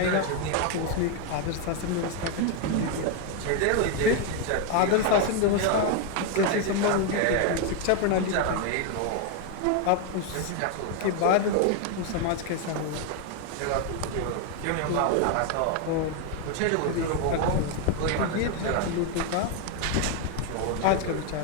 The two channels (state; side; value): different; both; correlation 0.01